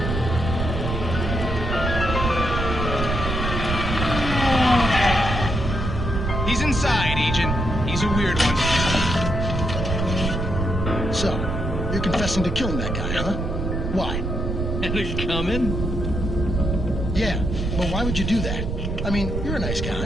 You're confessing to killing that guy, huh? Why? And it's coming? Yeah, but why would you do that? I mean, you're a nice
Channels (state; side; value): noise; right; rumble, 2 dB below the sound